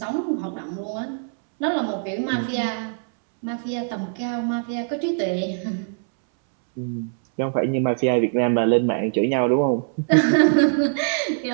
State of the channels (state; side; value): silent; left; 64 dB below the other